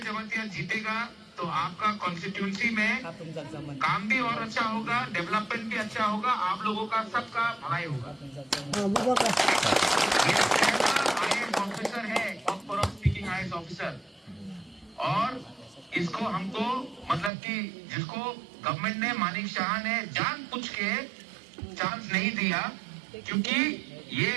जीतेगा तो आपका कॉन्स्टिट्यूंसी में काम भी और अच्छा होगा, डेवलपमेंट भी अच्छा होगा, आप लोगों का सबका भलाई होगा। IAS ऑफिसर है, स्पीकिंग IAS ऑफिसर, और इसको हमको मतलब कि जिसको गवर्नमेंट ने, मानिक शाह ने जानबूझ के चांस नहीं दिया, क्योंकि ये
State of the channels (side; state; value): left; drops out; at 17.3 s